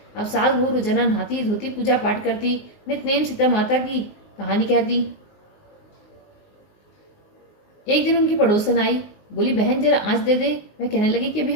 अब सास वो रोजाना नहाती धोती, पूजा पाठ करती, नित्य सीता माता की कहानी कहती। एक दिन उनकी पड़ोसन आई, बोली बहन जरा आँच दे दे। मैं कहने लगी कि अभी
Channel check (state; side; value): late; right; 19 ms